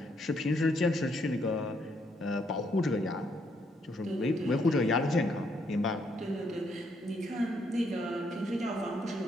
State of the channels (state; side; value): normal; both; correlation 0.73